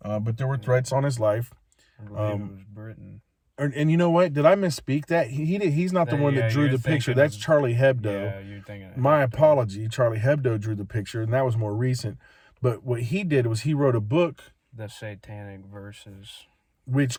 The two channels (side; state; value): both; identical; correlation 1.00